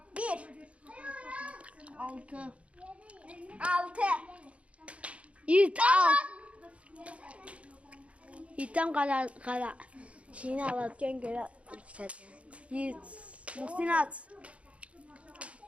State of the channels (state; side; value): late; left; 0.063 ms